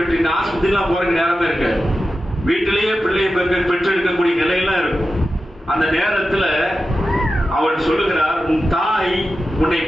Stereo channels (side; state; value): both; normal; correlation 0.92